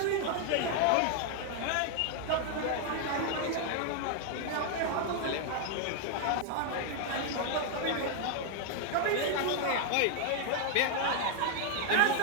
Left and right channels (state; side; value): different; both; correlation 0.00